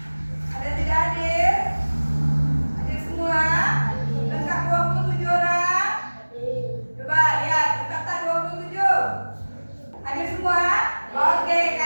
Ada yang tidak hadir? Hadir semua? Lengkap 27 orang? Coba lihat, lengkap tak 27? Hadir semua? Oke,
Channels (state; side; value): inverted; both; correlation -1.00